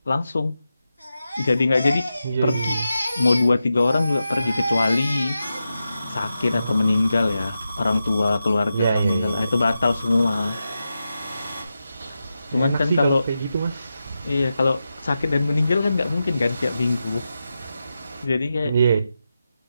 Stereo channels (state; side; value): inverted; both; correlation -0.90